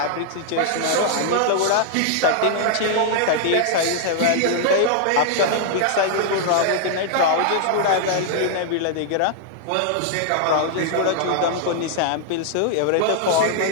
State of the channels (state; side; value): different; both; correlation -0.01